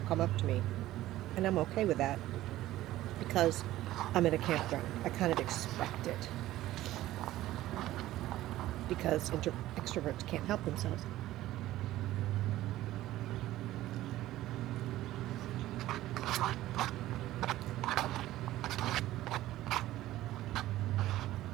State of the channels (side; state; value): left; quieter; 15.2 dB